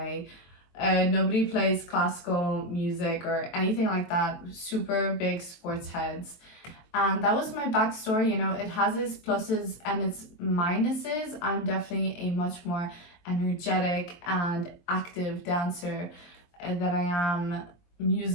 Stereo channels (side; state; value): right; late; 23 ms